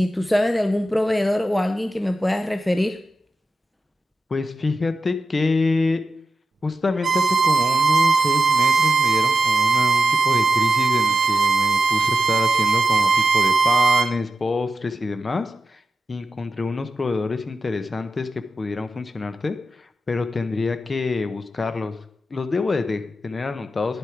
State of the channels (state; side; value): normal; both; correlation 0.90